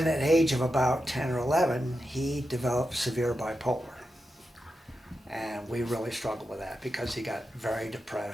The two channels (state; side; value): normal; both; correlation 0.89